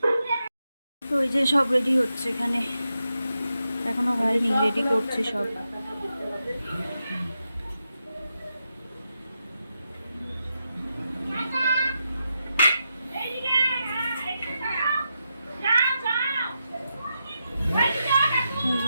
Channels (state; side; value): inverted; both; correlation -0.86